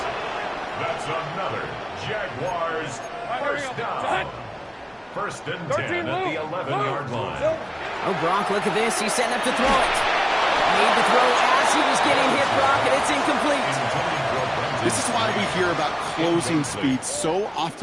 That's another Jaguars first down. 1st and 10 at the 11-yard line. Oh, Brock, look at this. He's setting up to throw it. Made the throw as he was getting hit, Brock, and it's incomplete. This is why we hear about closing speed so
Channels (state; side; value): identical; both; correlation 1.00